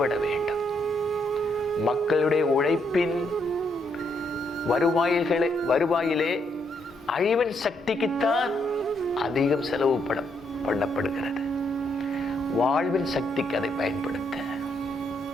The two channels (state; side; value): normal; both; correlation 0.75